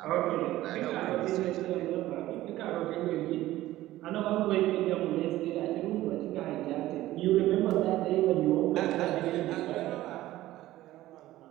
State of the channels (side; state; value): left; quieter; 15.7 dB